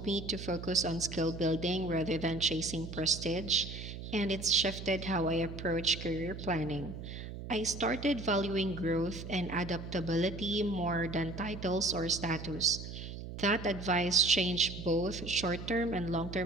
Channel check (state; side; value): noise; right; hum, 9 dB below the sound